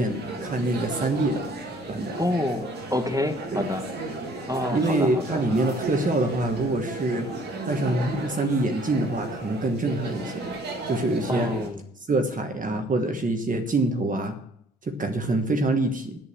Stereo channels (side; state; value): both; normal; correlation 0.58